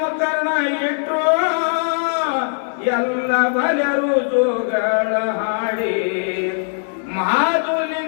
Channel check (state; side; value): silent; right; digital silence